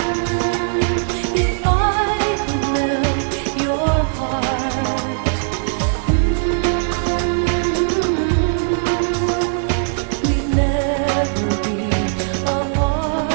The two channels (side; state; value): left; silent; 66 dB below the other